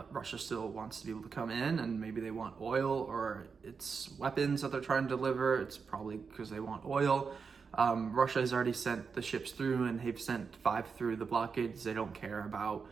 Russia still wants to be able to come in, and maybe they want oil, or it's weapons that they're trying to deliver. It's probably because they want oil. Russia has already sent the ships through, and they've sent 5 through the blockades. They don't care about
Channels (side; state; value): left; quieter; 5.5 dB